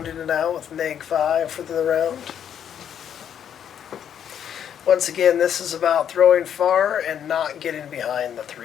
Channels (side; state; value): right; quieter; 9.0 dB